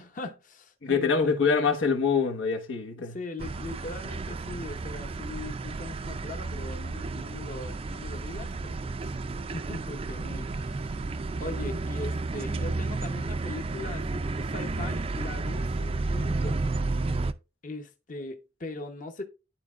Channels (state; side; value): normal; both; correlation 0.54